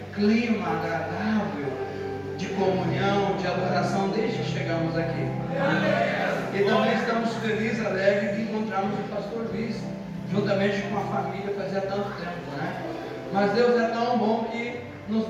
clima agradável de comunhão, de adoração desde que chegamos aqui. E também estamos felizes, alegres de encontrarmos o pastor Luiz, juntamente com a família, fazia tanto tempo, né? Mas Deus é tão bom que nos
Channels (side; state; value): both; identical; correlation 1.00